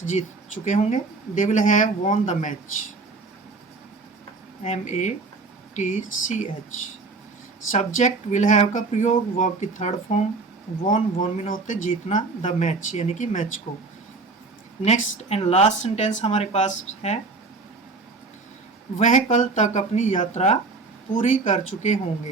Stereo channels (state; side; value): quieter; left; 3.8 dB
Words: जीत चुके होंगे। They will have won the match, MATCH। Subject will have का प्रयोग, वर्ब की third form won, won mean होते जीतना, द मैच यानी कि मैच को। नेक्स्ट एंड लास्ट सेंटेंस हमारे पास है, वह कल तक अपनी यात्रा पूरी कर चुके